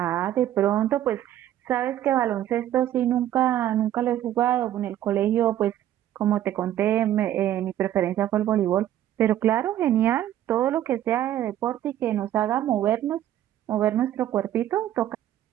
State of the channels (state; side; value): quieter; left; 12.0 dB